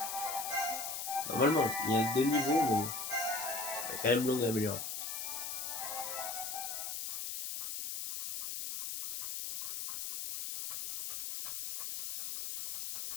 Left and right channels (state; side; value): noise; left; hiss, 4 dB below the sound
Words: Normalement, il reste 2 niveaux, mais bon. Il y a quand même long à améliorer.